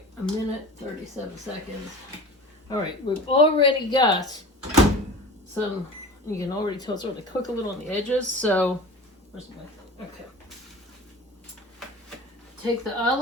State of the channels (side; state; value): both; normal; correlation 0.37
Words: a minute 37 seconds. All right, we've already got some, you can already tell it's starting to cook a little on the edges, so, where's my, okay. Take the